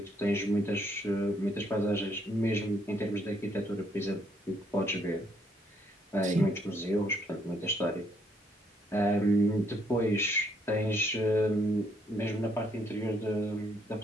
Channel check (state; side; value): normal; both; correlation 0.70